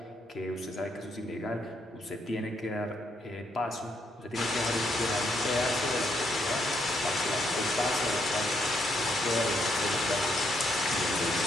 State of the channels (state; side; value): normal; both; correlation 0.75